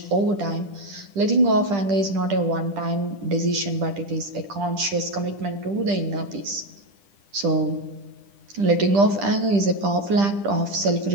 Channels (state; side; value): late; left; 10 ms